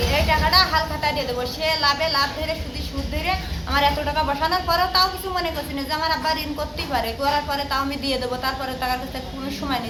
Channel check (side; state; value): both; identical; correlation 1.00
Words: এই টাকাটা হালখাতা দিয়ে দেবো। সে লাভ ধরে সুদ ধরে আমার এত টাকা বসানোর পরেও তাও কিছু মনে করছি না যে আমার আব্বা ঋণ করতেই পারে, করার পরে তাও আমি দিয়ে দেবো। তারপরে টাকার কাছে কোনো সময়